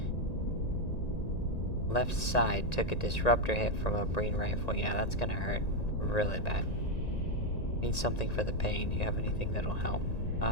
Left side took a disruptor hit from a Breen rifle. Yeah, that's gonna hurt really bad. Need something for the pain. Do you have anything that'll help?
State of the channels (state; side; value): late; right; 1.9 ms